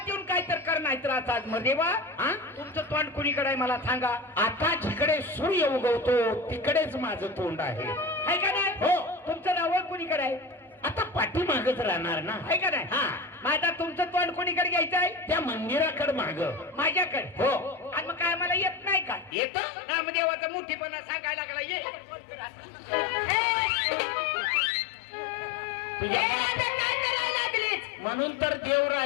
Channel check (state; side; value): drops out; right; at 19.4 s